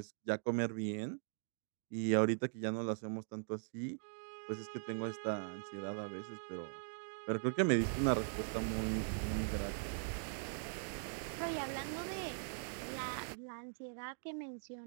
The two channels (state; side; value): silent; left; digital silence